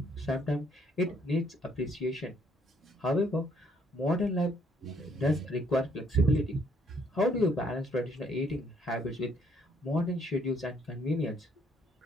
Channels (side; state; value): both; normal; correlation 0.67